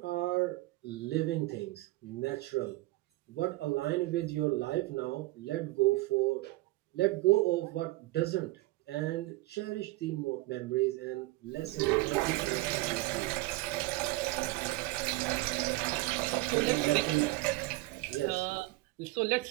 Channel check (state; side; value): quieter; left; 20.0 dB